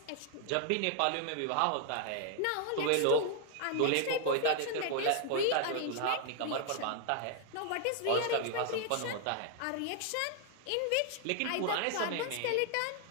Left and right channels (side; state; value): both; different; correlation 0.00